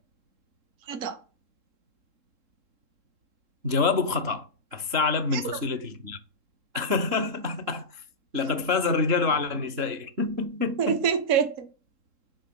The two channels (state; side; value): late; left; 3.7 ms